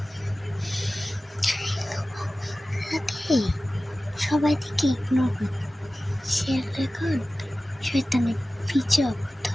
সবাই থেকে ইগনোর করি, সে এখন শয়তানের পিছু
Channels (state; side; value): normal; both; correlation 0.96